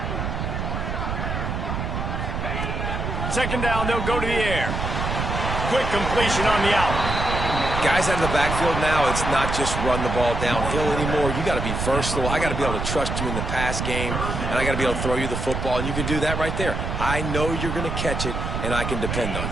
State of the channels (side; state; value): right; noise; rumble, 3 dB below the sound